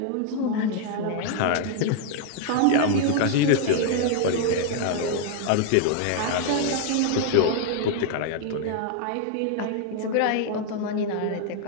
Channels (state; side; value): different; both; correlation 0.00